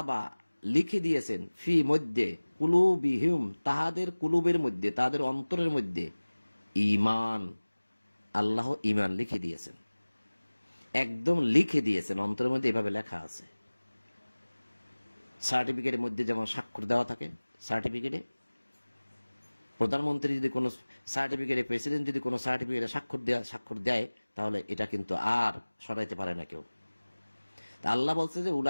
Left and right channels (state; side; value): inverted; both; correlation -1.00